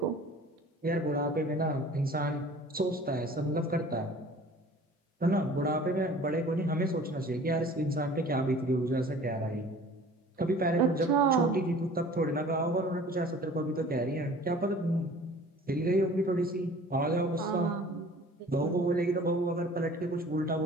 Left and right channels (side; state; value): both; normal; correlation 0.47